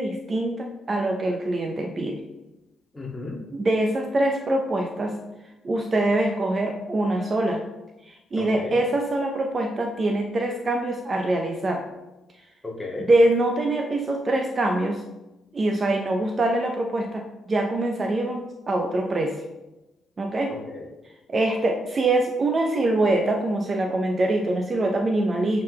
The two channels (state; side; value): normal; both; correlation 0.83